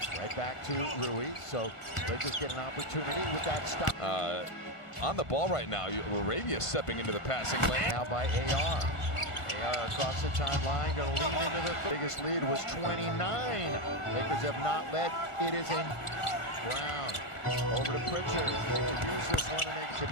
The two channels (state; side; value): late; right; 1.5 ms